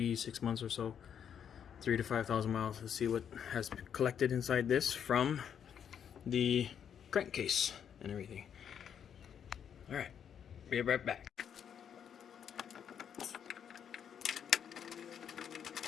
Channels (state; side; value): quieter; right; 8.3 dB